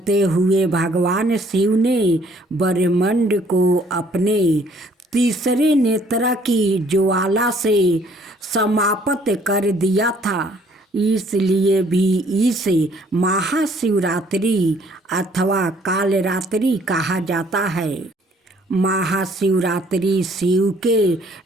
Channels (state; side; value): normal; both; correlation 0.61